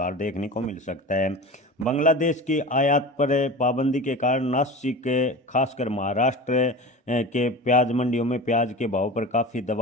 देखने को मिल सकता है। बांग्लादेश की आयात पर पाबंदी के कारण नासिक, खासकर महाराष्ट्र के प्याज मंडियों में प्याज के भाव पर काफ़ी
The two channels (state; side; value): normal; both; correlation 0.32